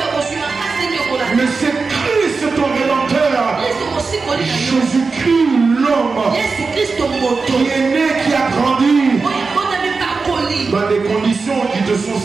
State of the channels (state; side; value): quieter; left; 4.4 dB